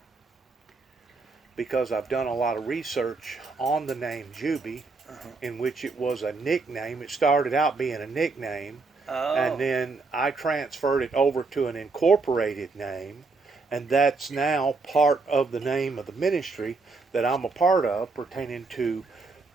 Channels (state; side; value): quieter; left; 4.0 dB